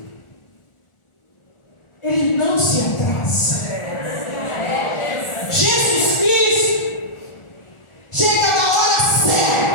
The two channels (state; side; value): late; right; 1.4 ms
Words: ele não se atrasa. Jesus Cristo chega na hora